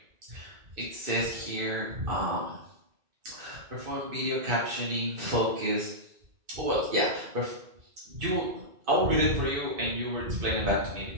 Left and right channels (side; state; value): left; late; 2.3 ms